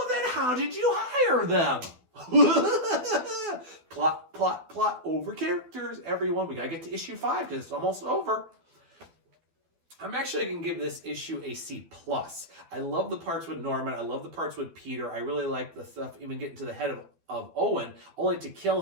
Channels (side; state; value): left; late; 12 ms